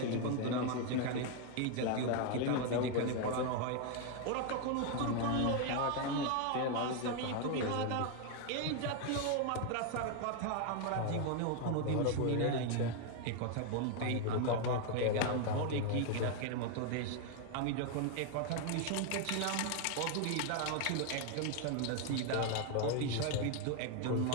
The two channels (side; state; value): both; different; correlation 0.01